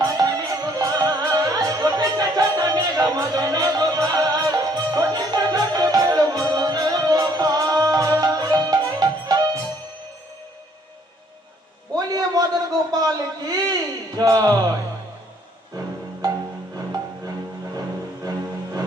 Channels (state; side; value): normal; both; correlation 0.64